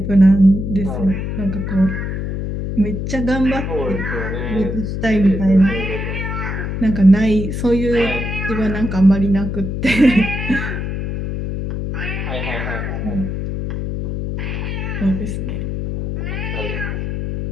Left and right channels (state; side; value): noise; left; hum, 3 dB below the sound